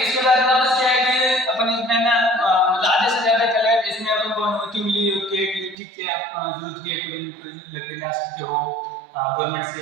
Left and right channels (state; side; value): drops out; left; at 5.8 s